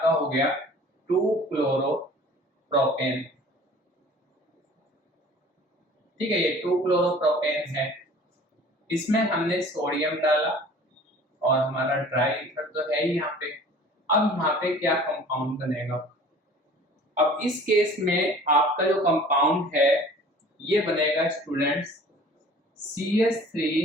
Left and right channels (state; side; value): normal; both; correlation 0.47